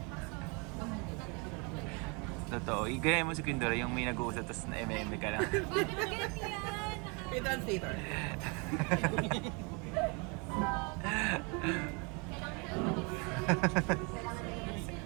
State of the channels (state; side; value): quieter; left; 31.6 dB